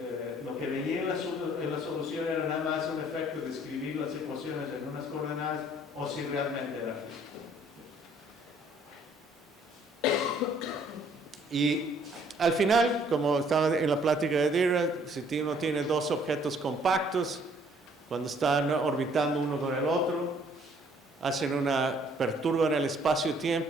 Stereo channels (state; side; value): normal; both; correlation 0.61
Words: lo que veía en la solución era nada más un efecto de escribir las ecuaciones en unas coordenadas o si realmente era físico. Y al final, como estaba en la plática de Dirac, si uno tiene dos objetos compactos, cuando están orbitando uno con el otro, perturban el